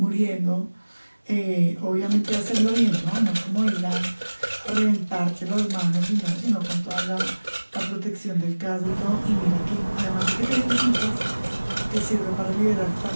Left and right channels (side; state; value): both; inverted; correlation -1.00